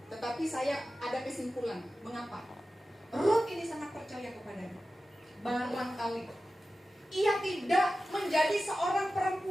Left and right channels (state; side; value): normal; both; correlation 0.94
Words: tetapi saya ada kesimpulan. Mengapa? Rut ini sangat percaya kepadanya. Barangkali ia tidak menjadi seorang